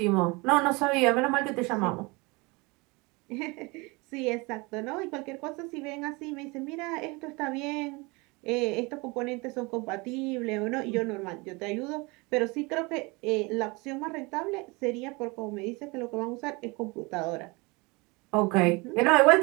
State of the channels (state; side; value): quieter; left; 26.4 dB